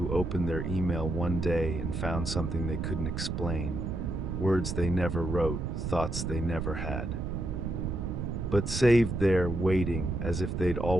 opened their email one day and found something they couldn't explain. Words they never wrote, thoughts they never had. But saved there, waiting, as if they'd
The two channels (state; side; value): noise; right; rumble, 3 dB below the sound